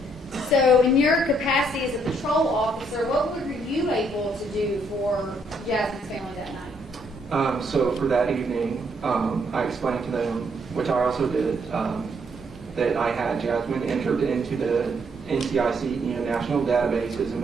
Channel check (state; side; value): normal; both; correlation 0.71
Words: So, in your capacity as a patrol officer, what were you able to do for Jasmine's family that night? So for that evening, I explained to them, which I also did, that I had Jasmine entered into the NCIC, national database as a